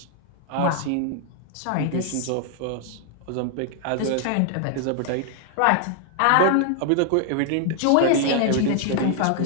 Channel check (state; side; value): different; both; correlation 0.00